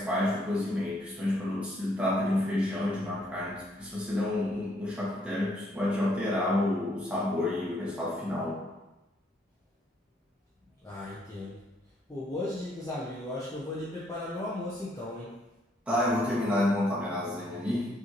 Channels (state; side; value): normal; both; correlation 0.69